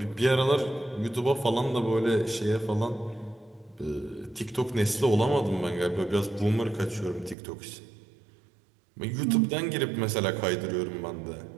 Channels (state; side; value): drops out; left; at 7.4 s